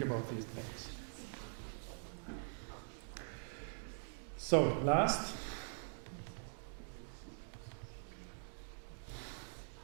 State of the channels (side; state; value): left; silent; digital silence